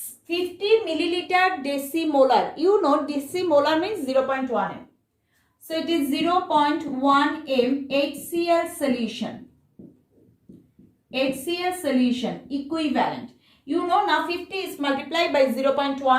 decimolar. You know decimolar means 0.1 m. So it is 0.1 m HCl solution. HCl solution equivalent. You know now 50 is multiplied by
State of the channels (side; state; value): both; identical; correlation 1.00